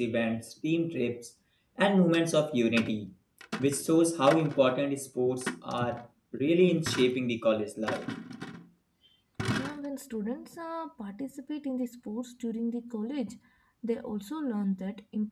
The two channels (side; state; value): both; identical; correlation 1.00